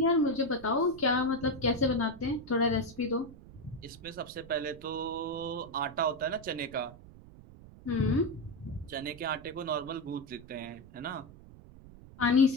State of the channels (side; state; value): right; noise; rumble, 19 dB below the sound